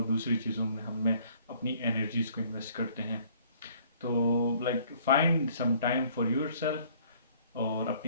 दूसरी चीज़ों में हमें अपनी एनर्जीज को इन्वेस्ट करते हैं। तो like find some time for yourself और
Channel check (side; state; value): both; inverted; correlation -0.58